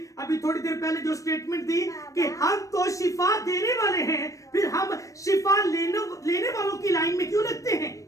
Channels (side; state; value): right; late; 0.16 ms